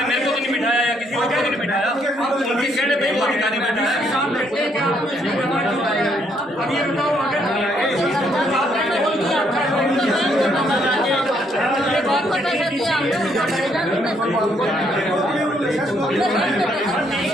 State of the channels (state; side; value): normal; both; correlation 0.71